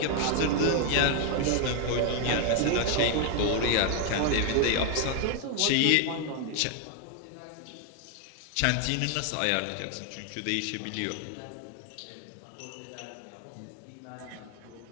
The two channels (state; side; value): different; both; correlation 0.01